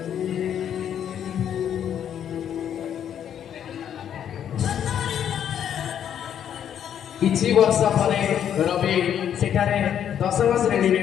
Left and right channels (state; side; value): quieter; right; 9.4 dB